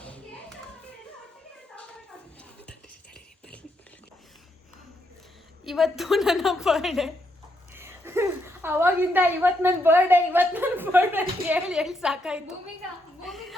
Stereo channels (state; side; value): normal; both; correlation 0.78